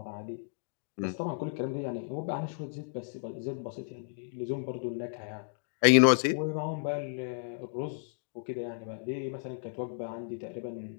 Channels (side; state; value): right; silent; digital silence